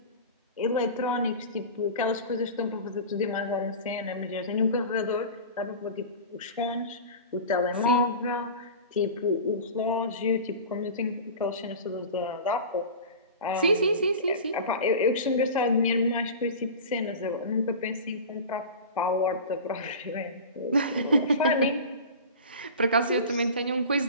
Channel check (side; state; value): both; inverted; correlation -0.33